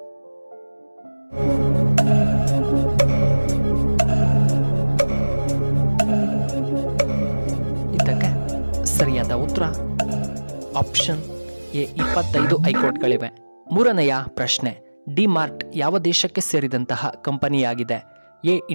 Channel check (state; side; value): inverted; both; correlation -1.00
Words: ಇದಕ್ಕೆ ಸರಿಯಾದ ಉತ್ತರ ಆಪ್ಷನ್ ಎ 25 ಹೈಕೋರ್ಟ್ಗಳಿವೆ. ಮೂರನೆಯ ಪ್ರಶ್ನೆ, ಡಿ ಮಾರ್ಟ್ ಯಾವ ದೇಶಕ್ಕೆ ಸೇರಿದಂತಹ ಕಂಪನಿಯಾಗಿದೆ? A